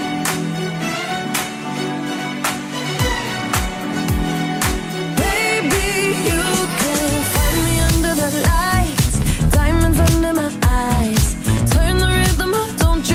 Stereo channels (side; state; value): both; identical; correlation 1.00